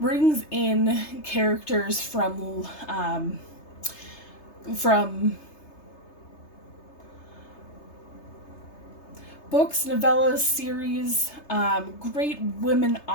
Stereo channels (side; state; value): right; late; 3.3 ms